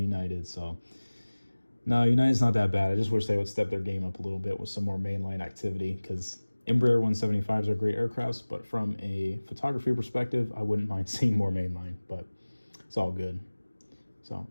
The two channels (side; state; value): both; inverted; correlation -1.00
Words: So, no, United's not that bad. I just wish they would step their game up a little bit with some more mainline activity, because Embraer 175s are great aircrafts, but from a photography perspective, I wouldn't mind seeing more mainline, but it's all good. So,